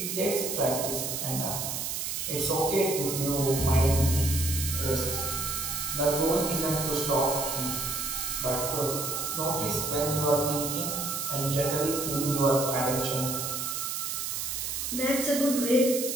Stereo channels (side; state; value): right; noise; hiss, 3 dB below the sound